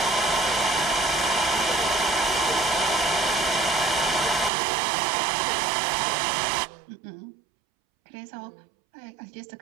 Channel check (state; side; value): drops out; left; at 4.5 s